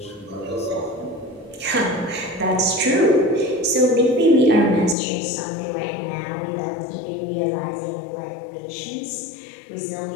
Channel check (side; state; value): right; drops out; at 5.0 s